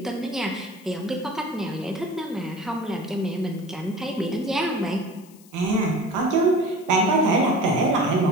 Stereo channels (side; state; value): left; noise; hiss, 25 dB below the sound